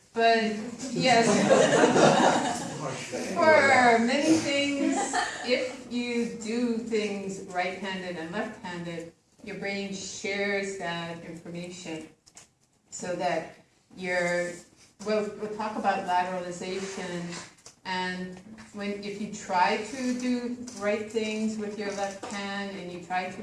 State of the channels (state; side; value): identical; both; correlation 1.00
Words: But yes, for many things, if you do things right-handed and left-handed, your brain shares that information so that we'll talk about lateralization. And if you try to do right things with your left hand and you try to